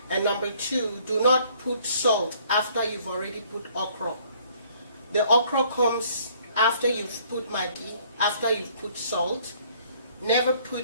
And number 2, do not put salt after you've already put okra. The okra comes after you've put Maggi, after you've put salt. Never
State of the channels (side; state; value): both; inverted; correlation -0.60